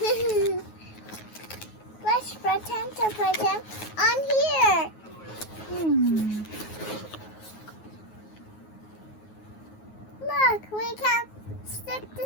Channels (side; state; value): right; late; 9.4 ms